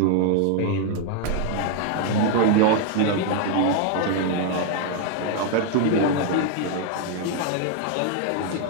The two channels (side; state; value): both; different; correlation 0.00